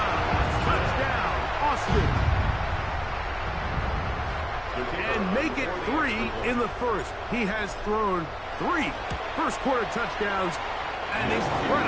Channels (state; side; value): identical; both; correlation 1.00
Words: Touchdown, Austin. And make it 3 in the first. He has thrown 3 first-quarter touchdowns. An